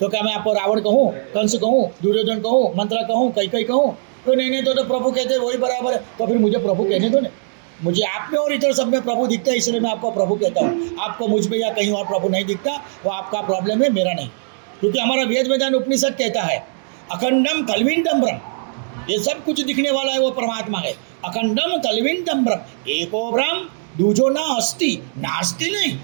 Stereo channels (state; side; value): silent; left; digital silence